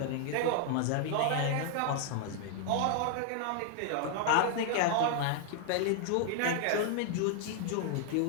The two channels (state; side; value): different; both; correlation 0.00